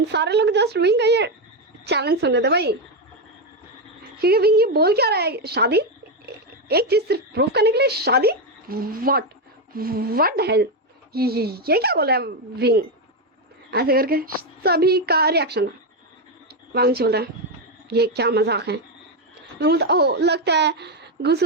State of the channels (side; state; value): both; normal; correlation 0.07